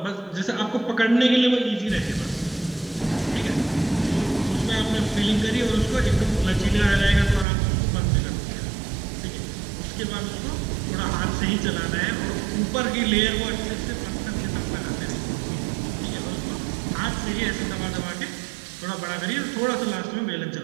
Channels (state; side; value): drops out; left; at 7.5 s